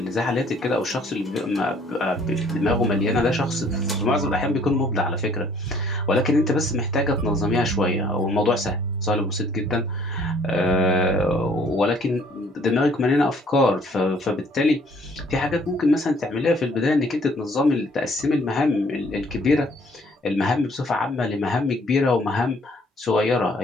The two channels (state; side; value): normal; both; correlation 0.60